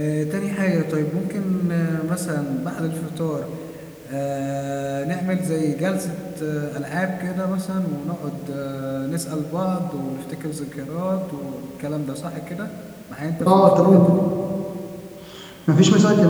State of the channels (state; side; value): identical; both; correlation 1.00